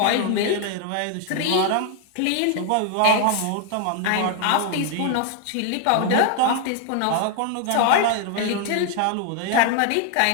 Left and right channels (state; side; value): different; both; correlation 0.00